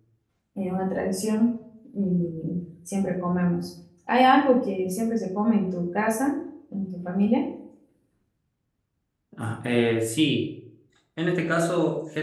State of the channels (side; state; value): both; identical; correlation 1.00